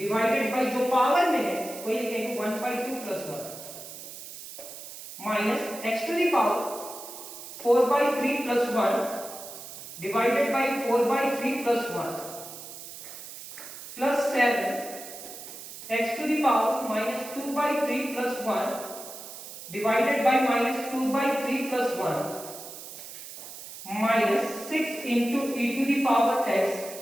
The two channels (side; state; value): right; noise; hiss, 12 dB below the sound